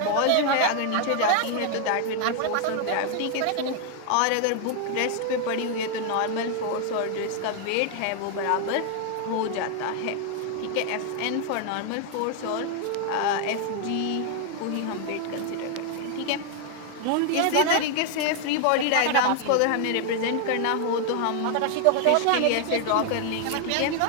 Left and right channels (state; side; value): different; both; correlation 0.00